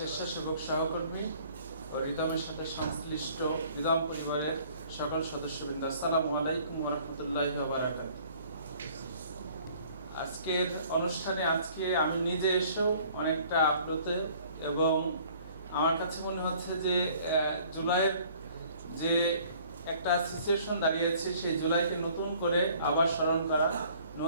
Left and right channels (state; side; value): inverted; both; correlation -0.56